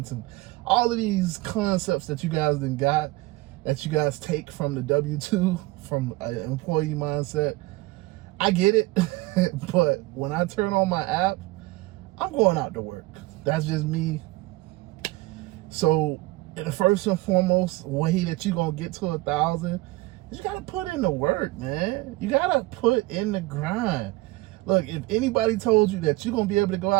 and all of these concepts that you guys take from the W-2, from an employee mindset. I get it, but when I turn on my app, I'm going out to work. That's just me. So the first and foremost way that you're going to get to 1,000 is you got to put in the work, man. You got to put in the grind. Look, if anybody told you that you're going to be able to go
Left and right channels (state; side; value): quieter; left; 20.5 dB